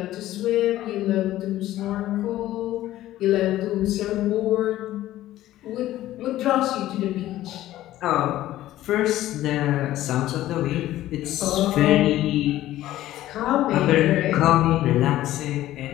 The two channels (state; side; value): quieter; right; 14.5 dB